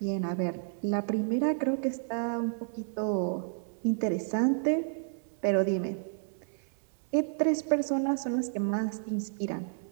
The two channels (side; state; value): left; silent; 57 dB below the other